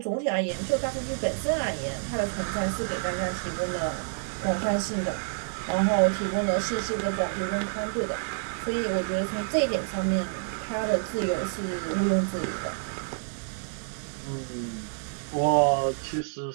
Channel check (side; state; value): left; silent; 59 dB below the other